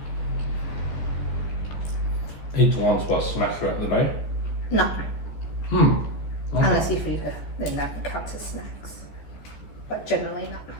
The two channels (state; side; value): late; right; 14 ms